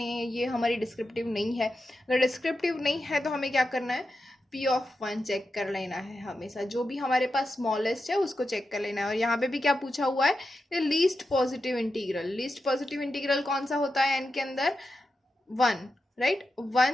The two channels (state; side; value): normal; both; correlation 0.89